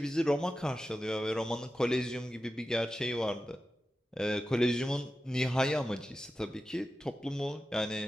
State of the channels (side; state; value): both; normal; correlation 0.93